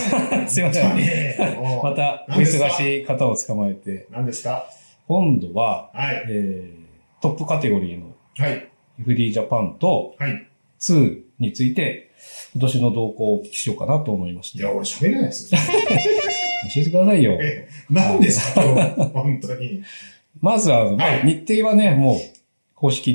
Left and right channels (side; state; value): both; inverted; correlation -1.00